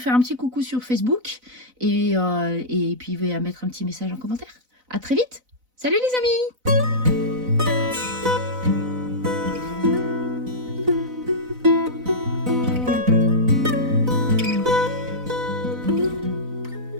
un petit coucou sur Facebook. Et puis à mettre un petit message en commentaire. À très vite. Salut les amis!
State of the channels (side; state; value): left; late; 4.0 ms